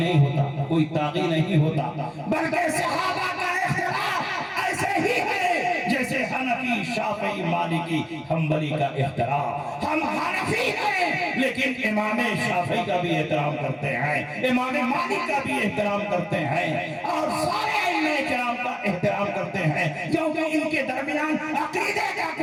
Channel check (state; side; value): identical; both; correlation 1.00